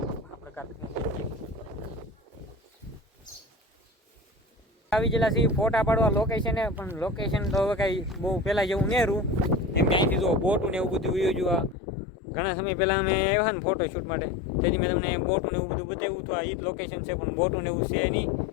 આવી ગયેલા છે ફોટા પાડવા લોકેશને, પણ લોકેશન તો હવે કાંઈ બહુ પહેલાં જેવું નેરું એમ કે અહીંથી જો બોટું ને એવું બધું વયું જોવા. ઘણા સમય પહેલાં અમે આવ્યા ને ફોટો શૂટ માટે, તેથી મેં તમને બોટું ને એવું બધું બતાવ્યું હતું. આ એ જ લોકેશન છે, પણ બોટું ને એવું છે નહીં.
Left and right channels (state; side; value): drops out; right; at 11.8 s